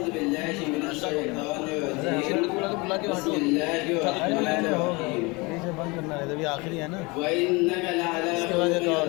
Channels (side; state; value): right; quieter; 26.1 dB